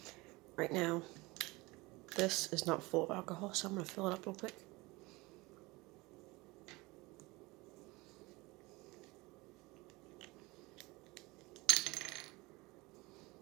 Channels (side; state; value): left; quieter; 23.0 dB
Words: Right now, this is not full of alcohol, so I'm going to fill it up real quick.